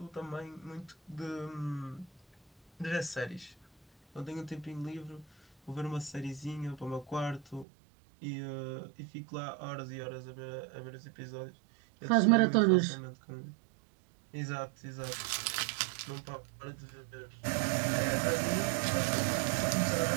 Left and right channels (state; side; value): drops out; left; at 7.7 s